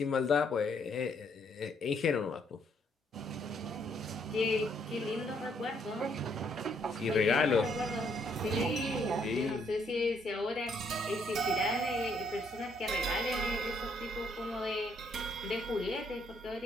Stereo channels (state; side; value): normal; both; correlation 0.70